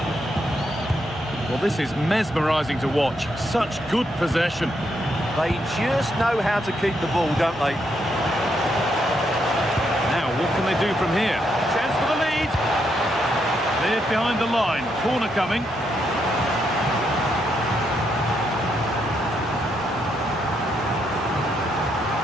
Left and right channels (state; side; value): normal; both; correlation 0.78